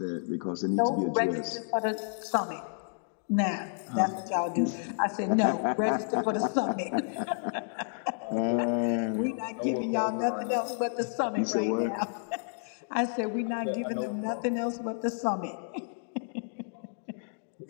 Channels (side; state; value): right; silent; digital silence